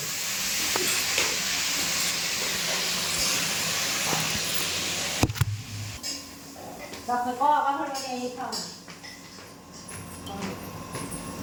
তারপরে কলা বাসন এই খাও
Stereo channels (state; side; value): identical; both; correlation 1.00